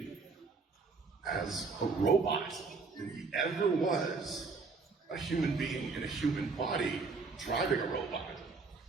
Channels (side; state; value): left; quieter; 4.4 dB